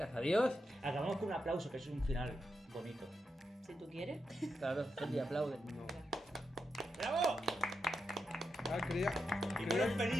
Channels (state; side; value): normal; both; correlation 0.86